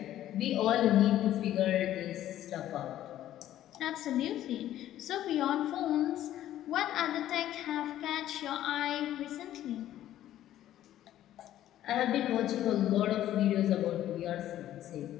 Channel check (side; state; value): right; quieter; 12.7 dB